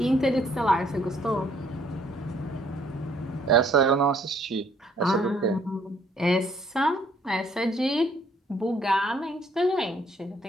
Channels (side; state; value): both; normal; correlation 0.64